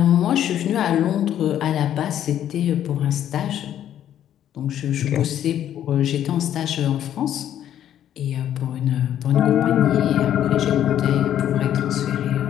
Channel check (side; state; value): right; quieter; 10.8 dB